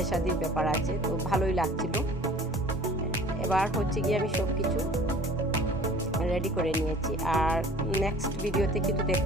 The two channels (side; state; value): both; normal; correlation 0.48